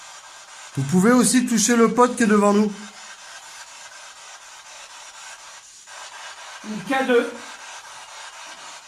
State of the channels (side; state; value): both; identical; correlation 1.00